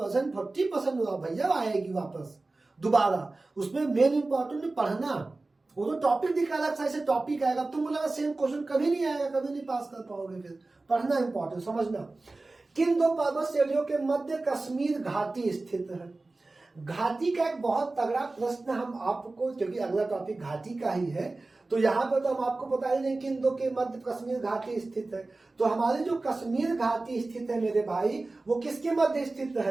40% भैया आएगी वापस दोबारा। उसमें मेन इंपॉर्टेंट पढ़ना, वो तो टॉपिक दिखा रहा है, टॉपिक आएगा। तुम बोला सेम क्वेश्चन कभी नहीं आएगा, कभी नहीं पास कर पाओगे। फिर पढ़ना इंपॉर्टेंट, समझना। किन 2 पर्वत श्रेणियों के मध्य कश्मीर घाटी स्थित है? घाटी का एक बहुत तगड़ा प्रश्न हम आपको, क्योंकि अगला टॉपिक घाटी का ही है, तो यहाँ पर तो हम आपको बता ही नहीं किन 2 के मध्य कश्मीर घाटी स्थित है। तो हमारी जो कश्मीर घाटी स्थित है मेरे भाई, वो किसके मध्य स्थित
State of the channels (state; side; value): quieter; left; 3.3 dB